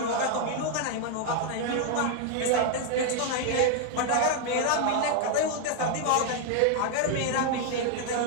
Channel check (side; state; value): both; different; correlation 0.00